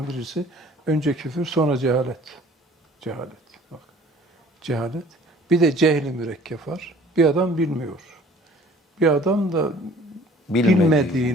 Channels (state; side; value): normal; both; correlation 0.52